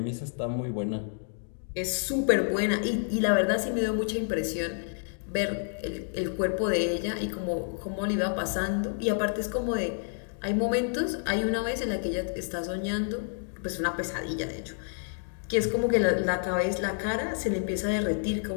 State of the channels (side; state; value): right; silent; digital silence